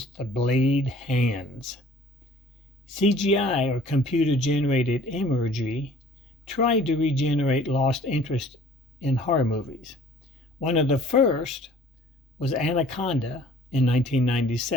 the blade hands. CGI, or computer-generated imagery, tried to regenerate lost interest in horror movies. One of the first was Anaconda in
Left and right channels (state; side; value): normal; both; correlation 0.52